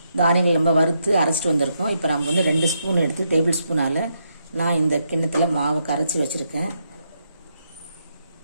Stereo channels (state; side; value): inverted; both; correlation -0.80